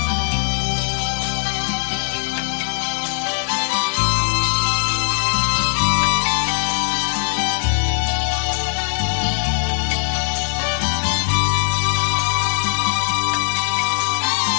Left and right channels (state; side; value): silent; right; 66 dB below the other